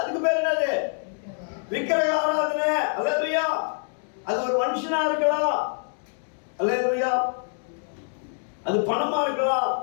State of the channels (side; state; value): right; silent; 61 dB below the other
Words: பேர் என்னது? விக்கிரக ஆராதனை. அல்லேலூயா. அது ஒரு மனுஷனா இருக்கலாம். அல்லேலூயா. அது பணமா இருக்கலாம்.